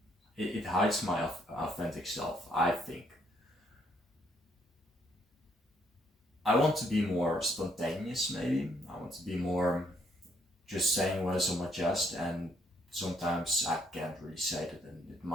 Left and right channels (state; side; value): normal; both; correlation 0.71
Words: it hides my authentic self, I think. I want to be more spontaneous, maybe. I want to be more just saying what is on my chest, and sometimes I can't really say that, and it